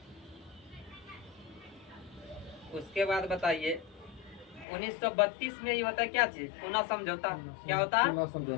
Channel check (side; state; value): right; drops out; at 4.7 s